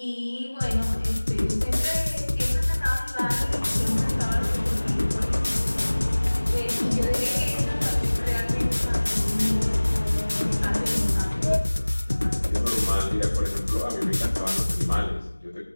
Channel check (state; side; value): inverted; both; correlation -1.00